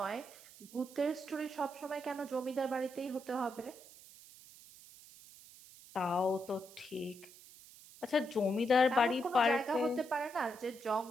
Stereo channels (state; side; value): noise; right; hiss, 20 dB below the sound